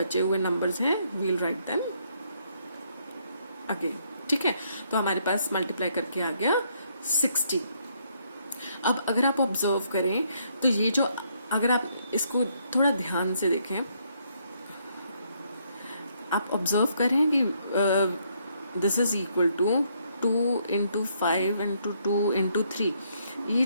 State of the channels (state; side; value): inverted; both; correlation -0.71